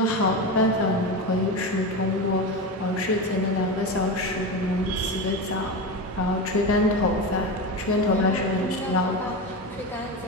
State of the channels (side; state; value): both; normal; correlation 0.20